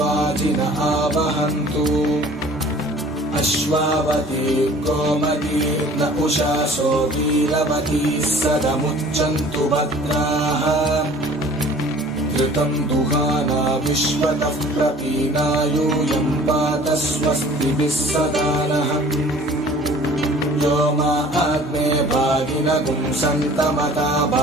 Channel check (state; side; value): normal; both; correlation 0.49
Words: आवहन्तु अश्वावती गोमती न उषासो वीरवती सदमुच्चन्तु भद्राः घृतं दुहाना विश्वतः प्रपीना यूयं पात स्वस्तिभिः सदा नः यो मा आग्ने भागिनगुं सन्तमता